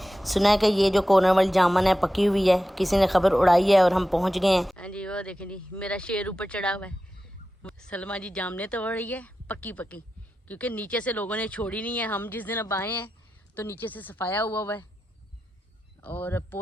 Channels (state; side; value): normal; both; correlation 0.92